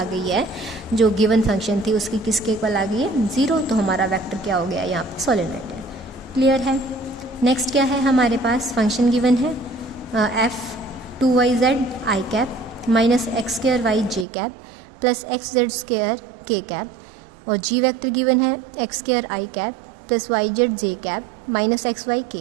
गई है, जो गिवन फंक्शन थी उसकी किसके इक्वल आ गई है? 0। तो हमारा वेक्टर क्या हो गया यहाँ पे? सोलेनोइडल। क्लियर है? नेक्स्ट क्या है हमारे पास? फंक्शन गिवन है F2yz i cap minus x square y j cap plus x z square k cap, और जी वेक्टर गिवन है x square i cap plus y z j cap minus x y k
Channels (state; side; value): drops out; left; at 14.2 s